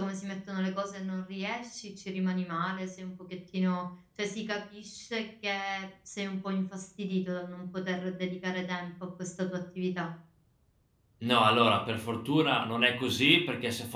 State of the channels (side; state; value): both; identical; correlation 1.00